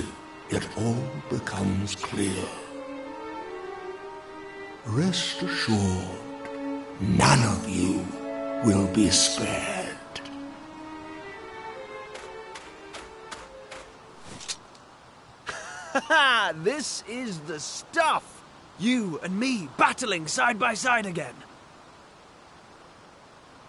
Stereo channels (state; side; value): identical; both; correlation 1.00